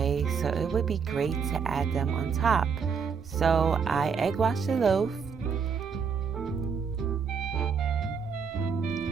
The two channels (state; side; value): quieter; left; 6.2 dB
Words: so it would be great to add them on top. So I egg washed the loaf